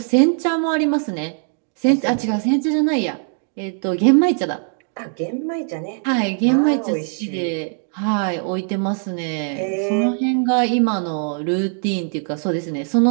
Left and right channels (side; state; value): left; silent; 58 dB below the other